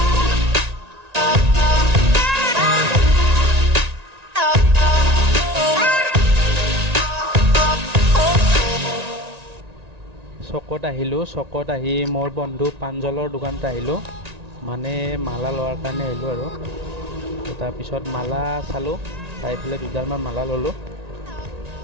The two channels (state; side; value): late; left; 1.9 ms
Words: চকত আহি মোৰ বন্ধু পাঞ্জলৰ দোকানত আহিলোঁ, মানে মালা লোৱাৰ কাৰণে আহিলোঁ আৰু তাৰপিছত মালা চালোঁ, চাই পেলাই দুডালমান মালা ল'লোঁ।